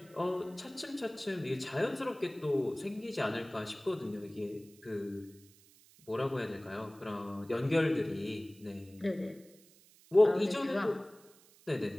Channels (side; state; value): right; noise; hiss, 26 dB below the sound